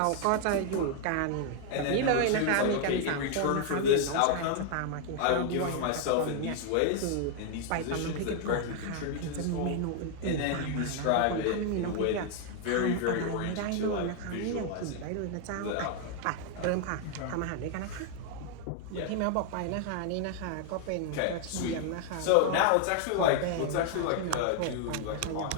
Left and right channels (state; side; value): different; both; correlation 0.00